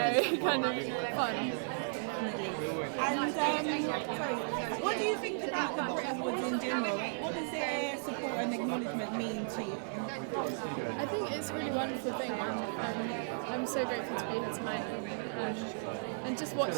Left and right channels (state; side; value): silent; left; digital silence